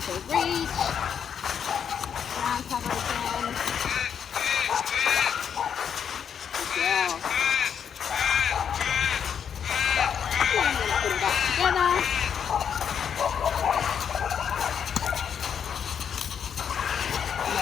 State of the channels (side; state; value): right; quieter; 7.8 dB